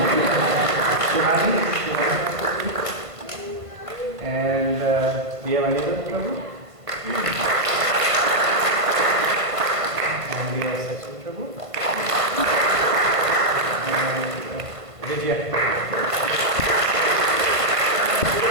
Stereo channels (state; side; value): late; left; 1.5 ms